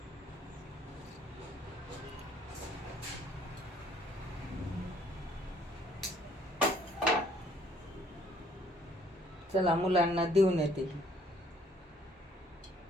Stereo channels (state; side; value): normal; both; correlation 0.62